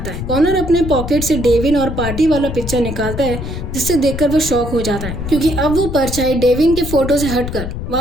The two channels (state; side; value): noise; left; rumble, 6 dB below the sound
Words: है। कॉनर अपने पॉकेट से डेविन और पार्टी वाला पिक्चर निकालता है, जिससे देखकर वो शॉक हो जाता है, क्योंकि अब वो परछाई डेविन के फोटो से हटकर